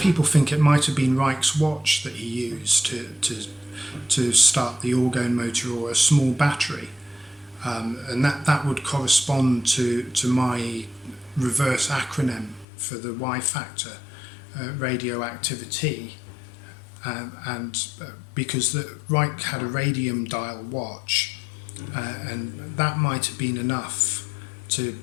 think it might have been Reich's watch that he used to start the orgone motor, or a small battery. And that would correspond to my reverse acronym for the Y factor, radioactivity. And because Reich had a radium dial watch, and that might have been enough to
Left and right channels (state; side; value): drops out; right; at 12.7 s